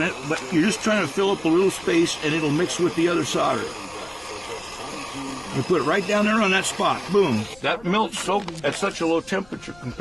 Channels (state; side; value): noise; left; rumble, 25 dB below the sound